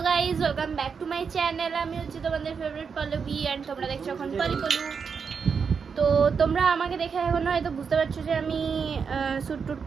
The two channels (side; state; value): left; quieter; 6.0 dB